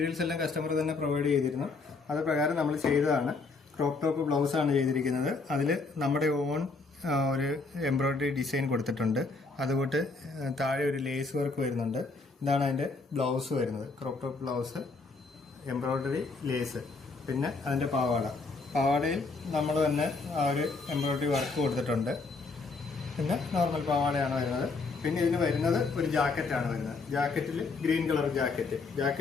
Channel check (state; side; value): quieter; right; 4.0 dB